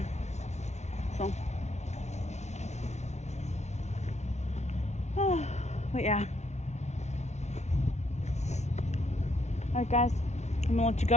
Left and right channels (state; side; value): late; right; 0.32 ms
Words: So, oh, but yeah. Alright guys, I'm gonna let you